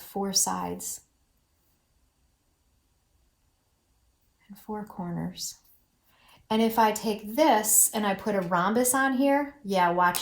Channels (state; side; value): identical; both; correlation 1.00